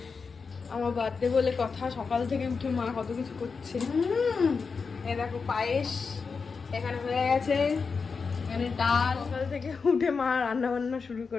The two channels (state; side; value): quieter; right; 5.1 dB